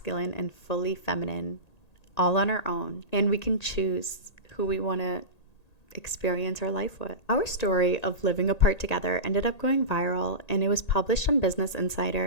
and fully feminine all on our own. And we can choose who we want to experience our life with. Our story of living apart together ended up going viral, and it was published on Business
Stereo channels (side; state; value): right; late; 1.8 ms